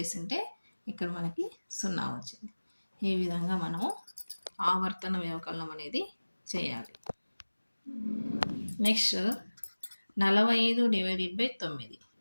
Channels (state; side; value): inverted; both; correlation -1.00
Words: ఇక్కడ మనకి 0 వచ్చింది. ఈ విధంగా మనము ఆవర్తన వ్యవకలనం అనేది చేయాలి. Next 45 divided by 9.